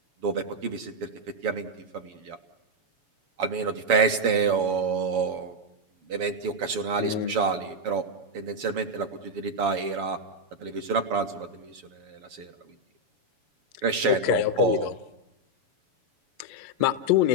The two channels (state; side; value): late; left; 7.1 ms